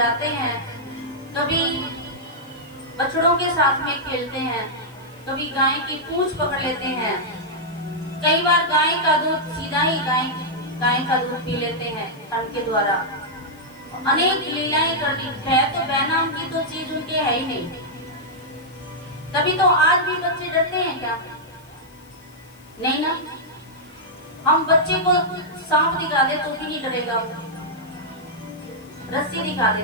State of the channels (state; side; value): noise; left; hiss, 28 dB below the sound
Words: हैं, कभी बछड़ों के साथ में खेलते हैं, कभी गाय की पूंछ पकड़ लेते हैं, कई बार गाय का दूध सीधा ही गाय का दूध पी लेते हैं ठंड के द्वारा। अनेक लीलाएं कर दी है, तो बहनाम की तो चीज उनके है ही नहीं। तभी तो आज भी बच्चे डरते हैं क्या? नहीं ना। हम बच्चे को सांप दिखा दे तो भी नहीं डरेगा, रस्सी दिखा दे